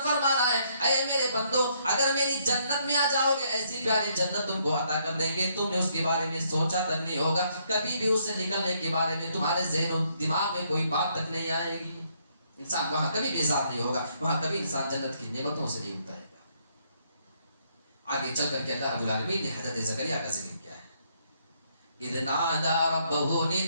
فرما رہا ہے، اے میرے بندو اگر میری جنت میں آ جاؤ گے، ایسی پیاری جنت تم کو عطا کر دیں گے، تم نے اس کے بارے میں سوچا تک نہیں ہوگا، کبھی بھی اس سے نکلنے کے بارے میں تمہارے ذہن و دماغ میں کوئی بات تک نہیں آئے گی۔ انسان وہاں کبھی بیزار نہیں ہوگا، وہاں کبھی انسان جنت کی نعمتوں سے نہیں اترے گا۔ آگے چل کر کے اللہ رب العالمین نے حضرت زکریا کا ذکر کیا ہے، اذ نادى ربه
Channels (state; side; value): inverted; both; correlation -0.71